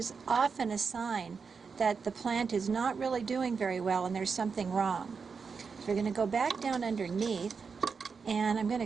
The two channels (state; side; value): quieter; left; 5.4 dB